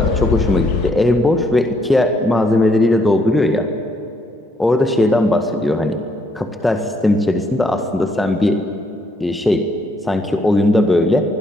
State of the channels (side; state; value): both; normal; correlation 0.71